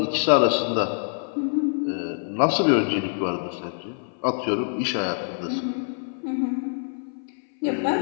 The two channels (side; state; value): right; silent; 57 dB below the other